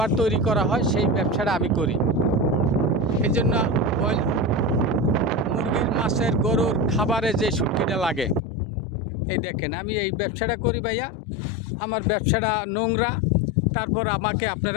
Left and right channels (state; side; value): drops out; right; at 8.4 s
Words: তৈরি করা হয় সেই ব্যবসাটা আমি করি। এই জন্য ওই মুরগির, মাছের, গরুর খাবারে যে শুটকিটা লাগে, এই দেখেন আমি এই ব্যবসাটা করি ভাইয়া। আমার ব্যবসাটা নোংরা, তারপর আমাকে